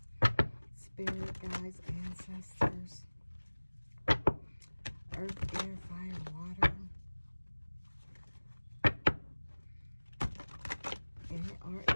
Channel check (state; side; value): inverted; both; correlation -1.00